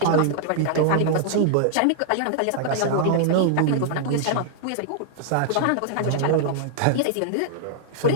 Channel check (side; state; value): both; different; correlation -0.01